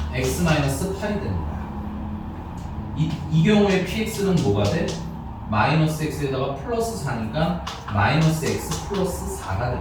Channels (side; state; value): both; identical; correlation 1.00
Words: x-8이 되는 거야. 이 경우에 px는 뭐가 돼? 마이너스 x에다가 플러스 4니까 마이너스 x 플러스 4가 되는